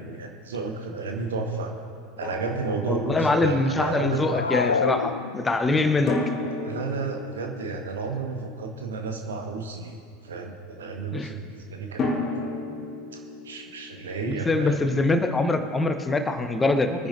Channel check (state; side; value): normal; both; correlation 0.48